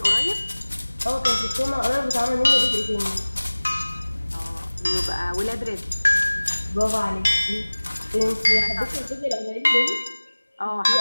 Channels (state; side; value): inverted; both; correlation -1.00